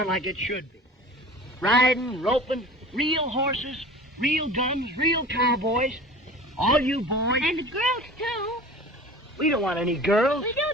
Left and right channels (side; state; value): both; normal; correlation 0.40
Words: like it should be. Riding, roping, real horses, real guns, real cowboys. All you boys... And the girls, too. We don't want any girls. We do,